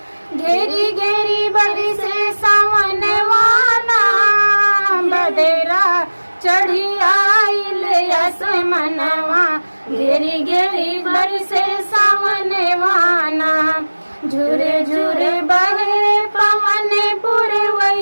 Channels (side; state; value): both; inverted; correlation -1.00